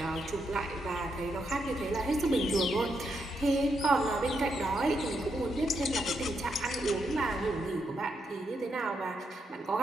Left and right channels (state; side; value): normal; both; correlation 0.81